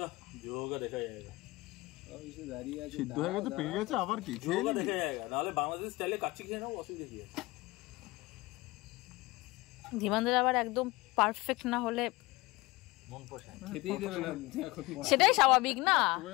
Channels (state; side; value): quieter; right; 21.8 dB